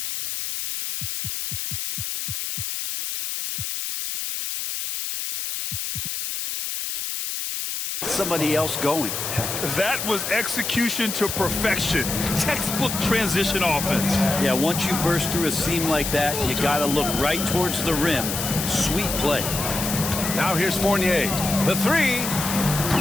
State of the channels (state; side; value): noise; left; hiss, 4 dB below the sound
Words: somebody else going. That was execution to perfection. Textbook transition offense. Yeah, once you burst through a seam like that, you got to look right towards the rim. Sweet play. Now here's Fournier. The 3.